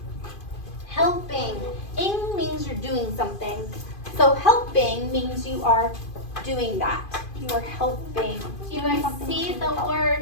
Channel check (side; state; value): right; late; 2.5 ms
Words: Helping. Ing means you're doing something. So helping means you are doing that. You are helping. Do you guys see the